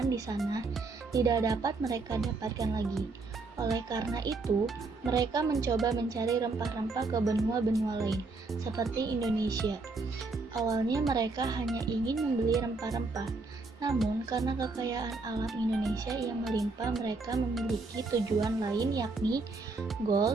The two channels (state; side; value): quieter; left; 3.8 dB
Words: di sana tidak dapat mereka dapatkan lagi. Oleh karena itu, mereka mencoba mencari rempah-rempah ke benua-benua lain, seperti Indonesia. Awalnya mereka hanya ingin membeli rempah-rempah, namun karena kekayaan alam Indonesia yang melimpah, mereka memiliki tujuan lain, yakni